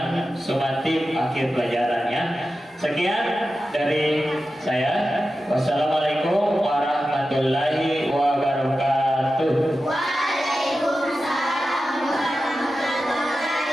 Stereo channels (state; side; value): normal; both; correlation 0.92